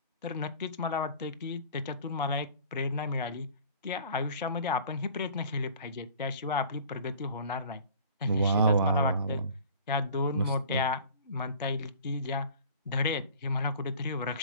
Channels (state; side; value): inverted; both; correlation -0.46